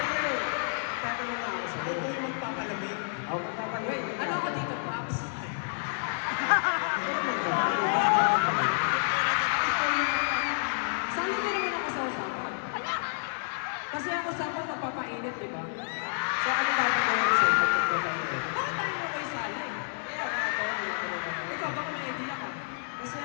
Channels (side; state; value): right; silent; digital silence